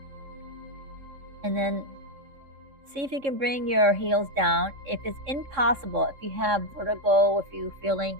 And then see if you can bring your heels down. If it's impossible, if you have vertigo, if you're feeling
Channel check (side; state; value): left; late; 3.6 ms